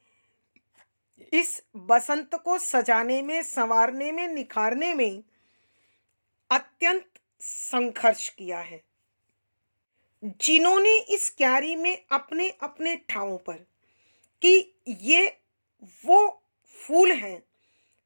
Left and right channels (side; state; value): both; inverted; correlation -1.00